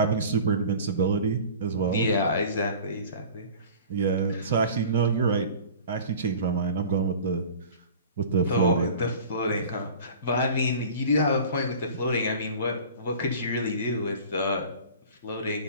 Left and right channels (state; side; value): inverted; both; correlation -0.42